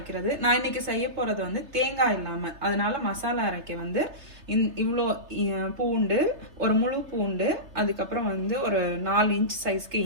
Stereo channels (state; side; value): late; left; 3.3 ms